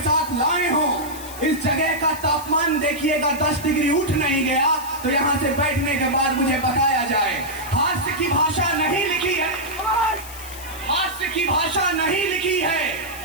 साथ लाए हो, इस जगह का तापमान देखिएगा 10 डिग्री उठ नहीं गया तो यहां से बैठने के बाद मुझे बताया जाए। हास्य की भाषा नहीं लिखी है, हास्य की भाषा नहीं लिखी है,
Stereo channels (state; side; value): noise; left; hiss, 14 dB below the sound